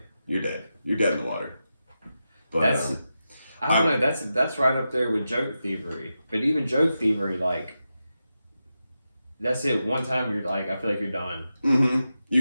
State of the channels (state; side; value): inverted; both; correlation -0.90